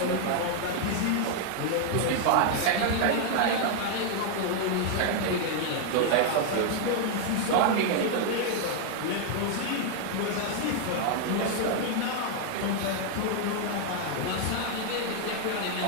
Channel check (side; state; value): both; different; correlation 0.00